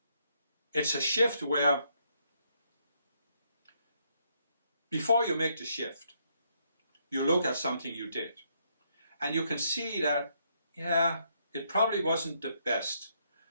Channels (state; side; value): inverted; both; correlation -0.74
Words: it's a shift where before you make the shift, you look at something you did, and you can see that, yeah, it probably wasn't the best,